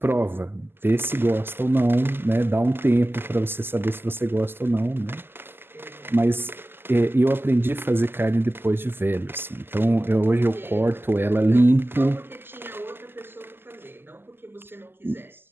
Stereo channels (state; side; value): late; left; 0.10 ms